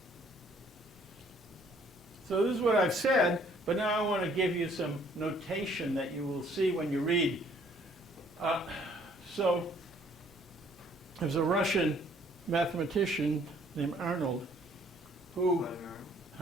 So this is what I've said, but now I want to give you some notation that you will see when you read. So there's a Russian mathematician named Arnold who, Vladimir Arnold?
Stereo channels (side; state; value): both; normal; correlation 0.61